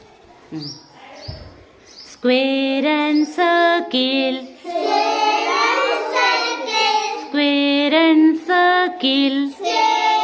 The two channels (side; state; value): both; identical; correlation 1.00